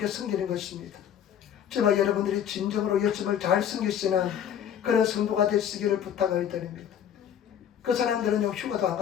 섬기는 것입니다. 저와 여러분들이 진정으로 예수님을 잘 섬기시는 그런 성도가 되시기를 부탁을 드립니다. 그 사람들은요 휴가도 안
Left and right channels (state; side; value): quieter; right; 9.3 dB